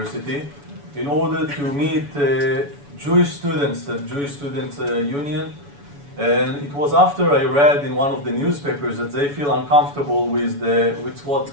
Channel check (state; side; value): late; left; 7.0 ms